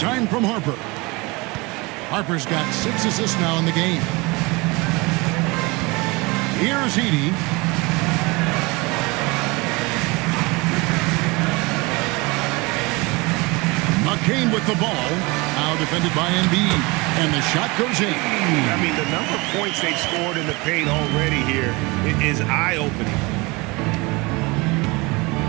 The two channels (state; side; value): quieter; left; 25.2 dB